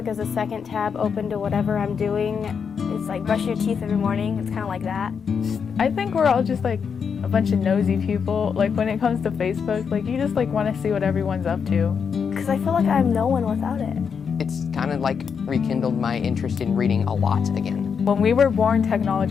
as a second tab open to whatever I'm doing. It's like brush your teeth every morning. It's kind of like that. I think we're all just like a bunch of nosy people. Like when it comes to Facebook, like you just like want to see what everyone's up to. Because I feel like I'm no one without it. It's kind of like rekindled my interest in reading a lot again. When we were born,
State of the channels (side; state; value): right; quieter; 6.5 dB